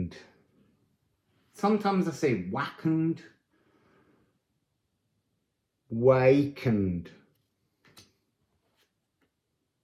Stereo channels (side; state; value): both; identical; correlation 1.00